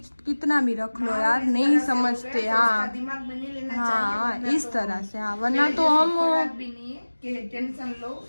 कितना भी रख लो यार, नहीं समझते। हाँ दिमाग में नहीं लेना हाँ, चाहिए, इस तरह से। हाँ, वरना तो हम भी नहीं है कि टेंशन लो,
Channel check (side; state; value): both; inverted; correlation -1.00